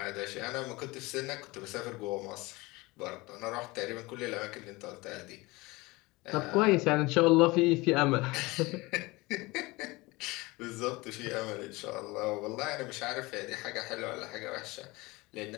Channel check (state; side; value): quieter; right; 22.7 dB